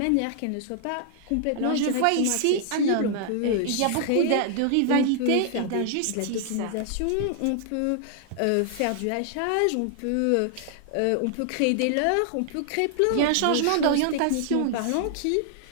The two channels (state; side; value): different; both; correlation 0.00